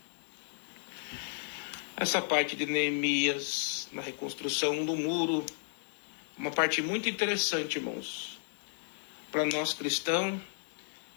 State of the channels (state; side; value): silent; right; digital silence